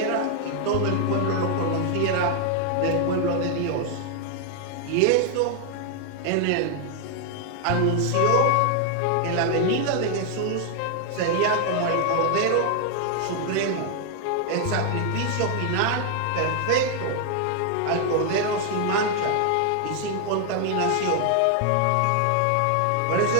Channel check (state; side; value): different; both; correlation 0.00